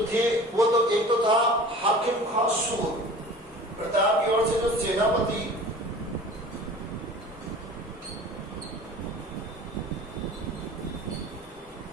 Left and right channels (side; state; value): both; normal; correlation 0.42